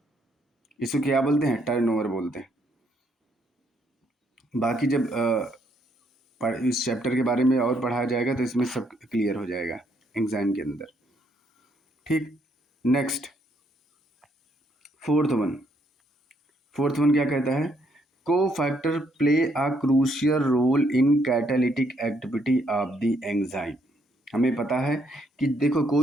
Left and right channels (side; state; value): both; normal; correlation 0.72